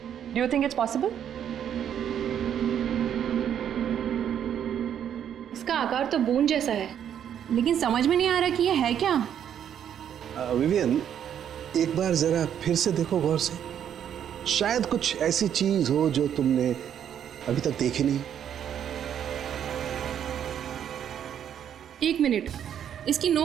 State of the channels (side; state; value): left; quieter; 9.3 dB